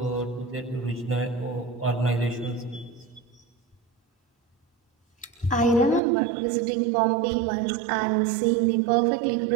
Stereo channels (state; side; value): drops out; left; at 6.0 s